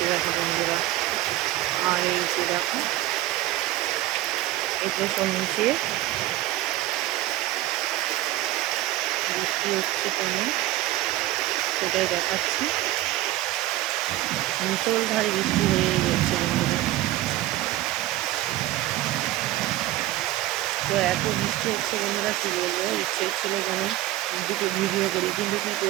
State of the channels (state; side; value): quieter; left; 15.7 dB